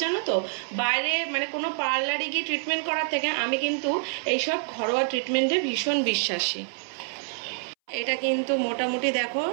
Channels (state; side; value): silent; left; 60 dB below the other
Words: জানো তো, বাইরে মানে কোনো পার্লারে গিয়ে ট্রিটমেন্ট করার থেকে আমি কিন্তু এইসব ঘরোয়া ট্রিটমেন্টে ভীষণ বিশ্বাসী। এটা কিন্তু মোটামুটি দেখো